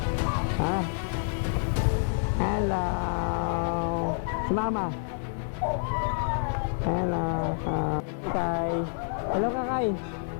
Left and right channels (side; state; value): right; silent; digital silence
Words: Hello. Si Mama. Hello. Kay. Hello Kakay.